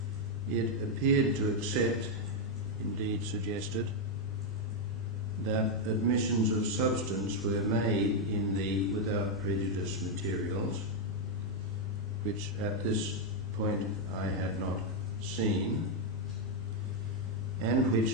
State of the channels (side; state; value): both; normal; correlation 0.01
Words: It appeared to accept, indeed suggested, that admissions of substance were made in the without prejudice materials, which at this point I had not seen, and